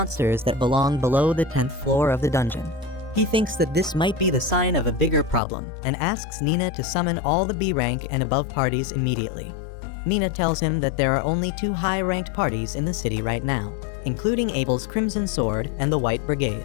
that belong below the 10th floor of the dungeon. He thinks that this might be the sign of a bigger problem, and asks Nina to summon all the B rank and above parties immediately. Nina tells him that there are only 2 high-ranked parties in the city right now, including Abel's Crimson Sword and the White Brigade.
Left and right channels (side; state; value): right; drops out; at 5.4 s